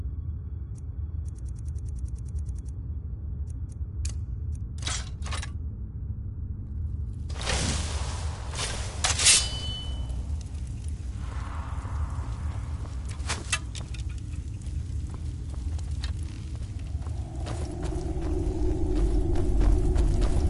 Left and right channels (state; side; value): identical; both; correlation 1.00